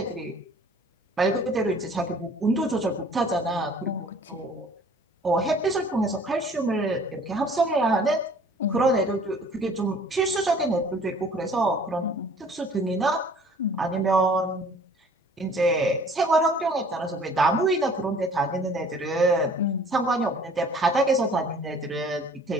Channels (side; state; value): both; normal; correlation 0.53